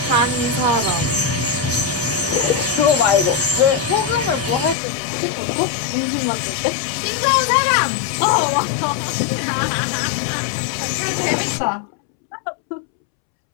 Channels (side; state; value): right; drops out; at 4.8 s